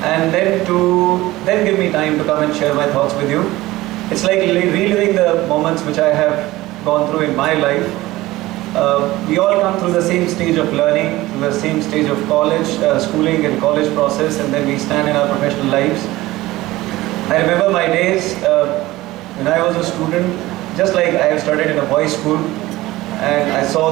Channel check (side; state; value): left; quieter; 18.1 dB